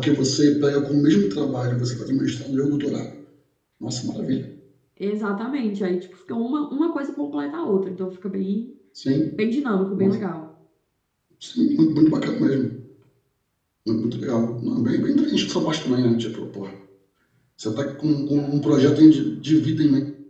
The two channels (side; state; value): both; identical; correlation 1.00